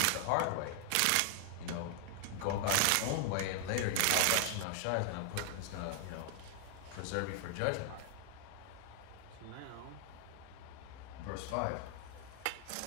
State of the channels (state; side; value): different; both; correlation 0.00